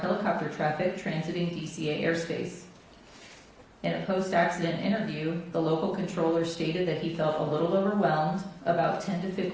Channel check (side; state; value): both; identical; correlation 1.00